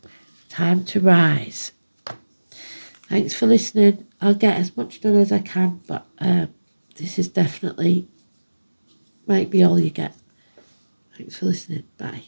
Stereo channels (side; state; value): both; inverted; correlation -1.00